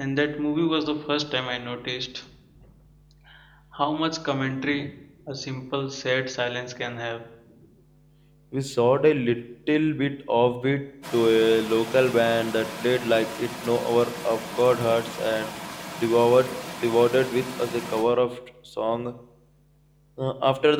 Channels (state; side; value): identical; both; correlation 1.00